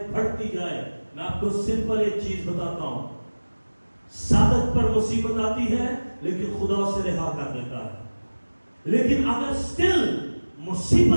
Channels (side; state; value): both; inverted; correlation -1.00